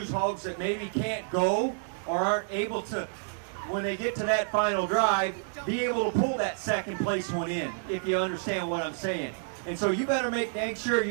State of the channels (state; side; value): silent; left; digital silence